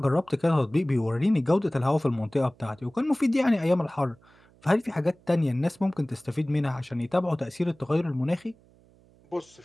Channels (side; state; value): right; noise; hum, 29 dB below the sound